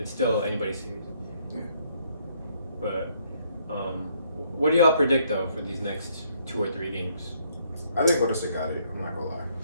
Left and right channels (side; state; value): both; inverted; correlation -0.68